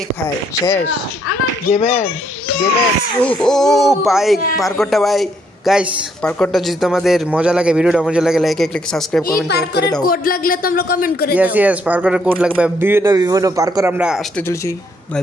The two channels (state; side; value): normal; both; correlation 0.71